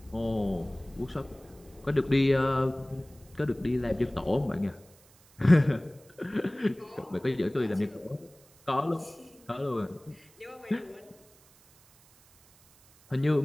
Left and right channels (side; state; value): right; noise; hiss, 28 dB below the sound